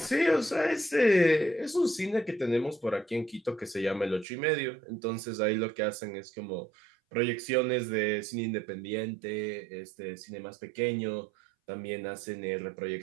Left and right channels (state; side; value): drops out; left; at 4.2 s